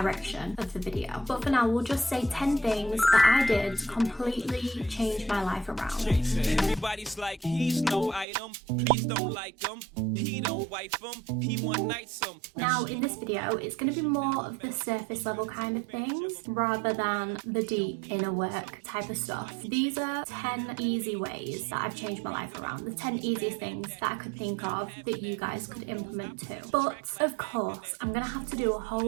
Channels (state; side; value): drops out; left; at 8.2 s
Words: of the video. But for now, we'll just say 10 things that I did to completely change my life around. Everybody's like, he's no item, please don't like him, he don't wife him, he one night some. Now in this video, it's going to be more of the surface level kind of things rather than the deep inner work type of stuff. These are 10 easy ways that I've changed my life around, the 10 easiest things that I could think of that you guys could implement too. But of course, I'm going to have to do a